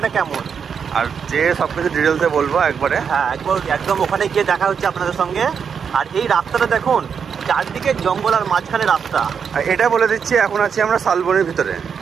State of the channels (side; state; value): left; quieter; 6.8 dB